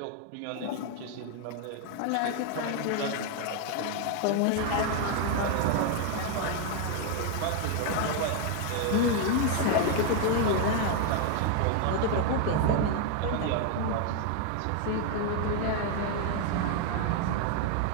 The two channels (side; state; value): both; different; correlation 0.00